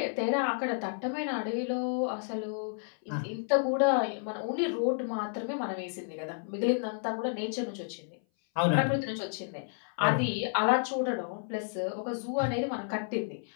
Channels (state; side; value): silent; right; 57 dB below the other